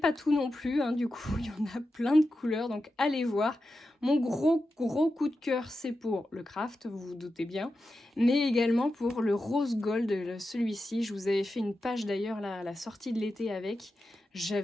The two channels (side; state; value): both; normal; correlation 0.90